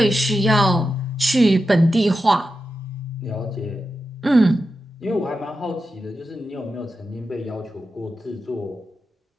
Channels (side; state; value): both; normal; correlation 0.90